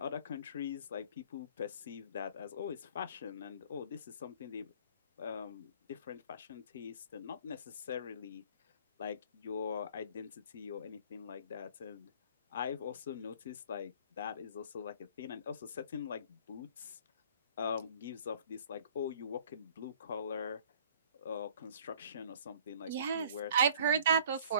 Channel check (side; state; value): both; inverted; correlation -0.52